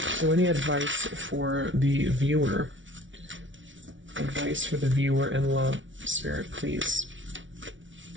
So any advice for the viewer? Advice for the viewer in love, Spirit, please.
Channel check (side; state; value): left; late; 0.56 ms